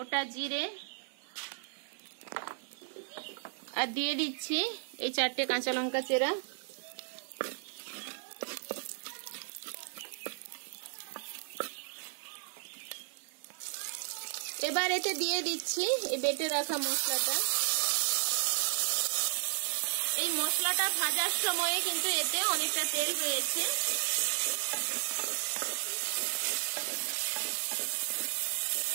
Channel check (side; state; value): left; silent; 55 dB below the other